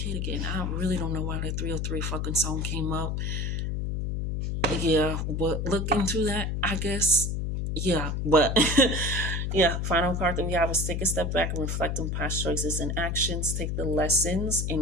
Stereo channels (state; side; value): noise; left; hum, 1 dB below the sound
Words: again. I really don't know why that 303 fucking song came up. Yeah, but look into that, I guess. Yeah, but yeah, final card that we have is take a step back and reflect on past choices and actions, take the lessons